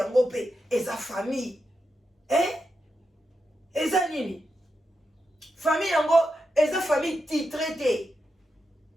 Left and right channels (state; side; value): normal; both; correlation 0.87